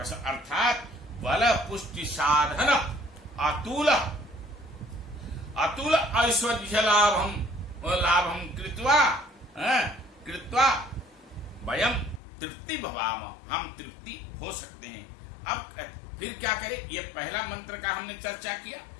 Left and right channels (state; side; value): drops out; right; at 12.2 s